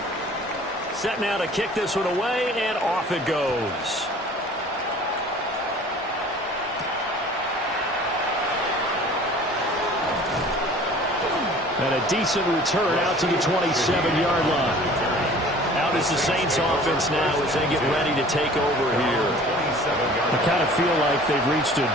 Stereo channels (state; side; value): normal; both; correlation 0.47